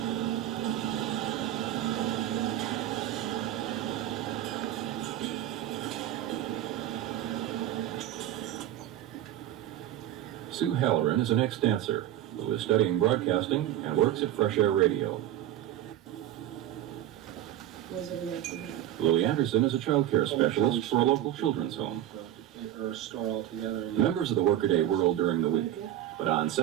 Sue Halloran is an ex-dancer who is studying broadcasting and works at Fresh Air Radio. Louie Anderson is a child care specialist for a local children's home. Members of the workaday world during the week, but on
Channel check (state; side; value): quieter; left; 12.4 dB